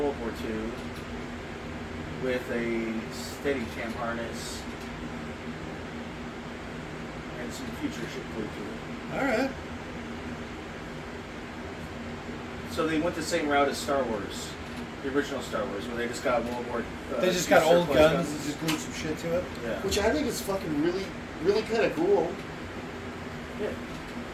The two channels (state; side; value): identical; both; correlation 1.00